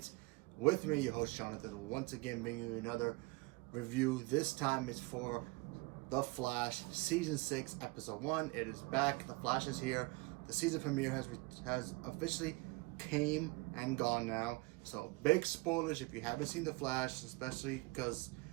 with me, your host, Jonathan. Once again, bringing you another review. This time it's for The Flash, Season 6, Episode 1. It is back. The Flash is here. The season premiere has officially came and gone now. So, big spoilers if you haven't seen The Flash, especially because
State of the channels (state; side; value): quieter; left; 24.9 dB